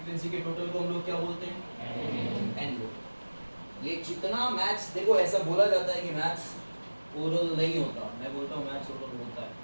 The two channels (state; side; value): inverted; both; correlation -1.00